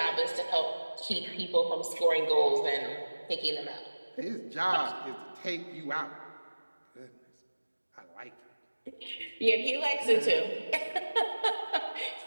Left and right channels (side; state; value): both; inverted; correlation -1.00